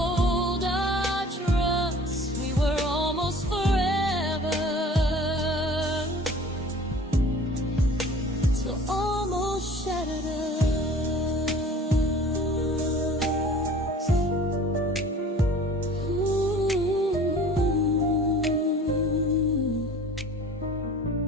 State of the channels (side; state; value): both; normal; correlation 0.46